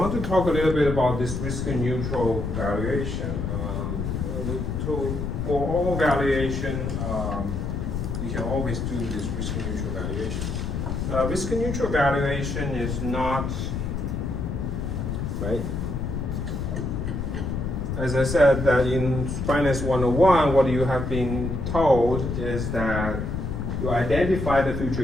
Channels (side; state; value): left; noise; rumble, 3 dB below the sound